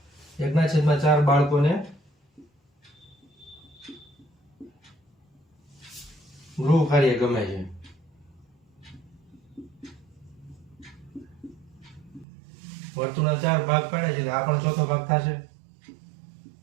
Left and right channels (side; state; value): left; drops out; at 12.2 s